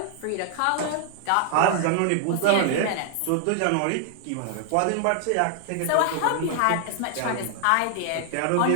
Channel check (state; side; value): different; both; correlation 0.00